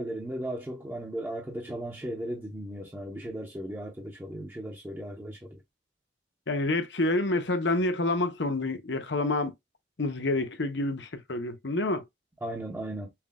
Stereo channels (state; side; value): normal; both; correlation 0.31